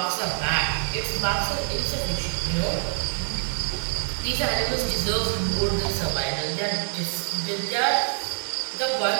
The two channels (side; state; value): left; silent; 61 dB below the other